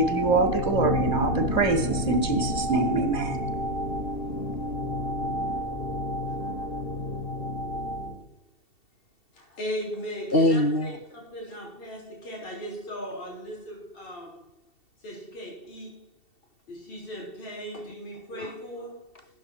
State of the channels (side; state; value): right; late; 2.7 ms